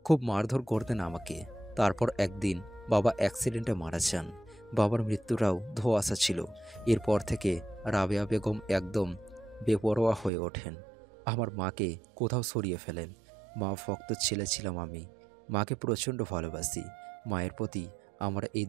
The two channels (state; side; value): drops out; left; at 10.3 s